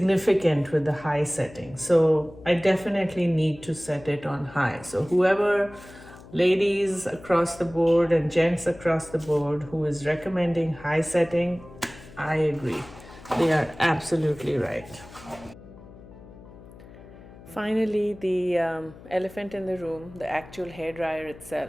with the high setting. So I definitely need to set it on high. So whoever, ladies across the board and gents across the board, who is recommending high setting, I agree. They are absolutely right. Finally, the elephant in the room, the actual hairdryer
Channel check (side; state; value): left; noise; hum, 19 dB below the sound